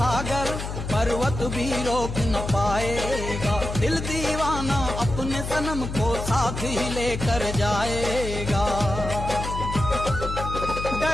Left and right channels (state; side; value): noise; left; hum, 6 dB below the sound